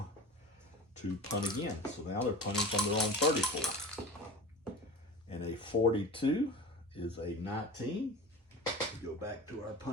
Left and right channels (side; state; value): both; normal; correlation 0.34